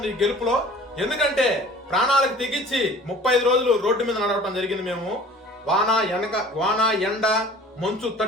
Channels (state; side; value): normal; both; correlation 0.46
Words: ఈ గెలుపులో. ఎందుకంటే ప్రాణాలకు తెగించి 35 రోజులు రోడ్డు మీద నడవటం జరిగింది. మేము వాన ఎండ మంచు